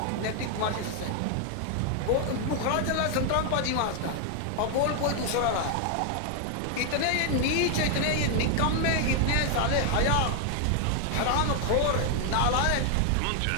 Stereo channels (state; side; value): different; both; correlation 0.00